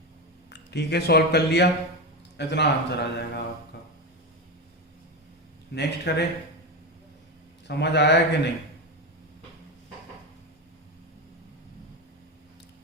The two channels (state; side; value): normal; both; correlation 0.16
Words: ठीक है, सॉल्व कर लिया, इतना आंसर आ जाएगा आपका। नेक्स्ट करें, समझ आया कि नहीं?